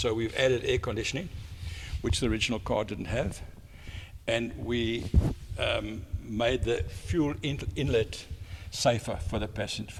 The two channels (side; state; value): both; identical; correlation 1.00